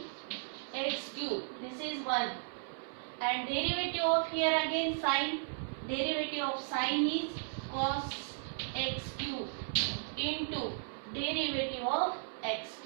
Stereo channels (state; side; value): silent; left; 54 dB below the other